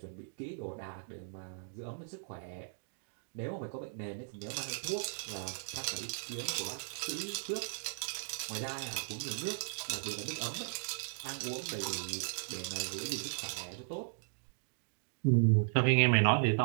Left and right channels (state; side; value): silent; left; digital silence